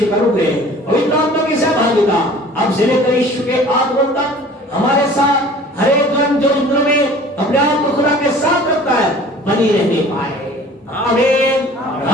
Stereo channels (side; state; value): both; normal; correlation 0.47